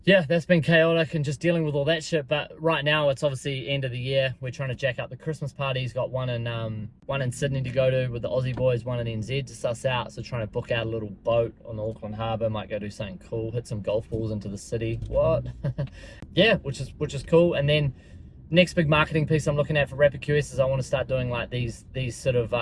Yeah, that's been chaotic and just dealing with all that shit. But right now it's obviously end of the year. We're trying to jack up the Christmas parties. Got one in Sydney to go to with the Aussie boys, one in NZ to suss out. So trying to book out a little boat on the Auckland Harbour. Might go do something cool, hit some golf balls into the city. What? Yeah, which is cool. And then next big marketing piece I'm looking at for Rapid QS is I want to start doing like these sort of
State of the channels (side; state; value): both; identical; correlation 1.00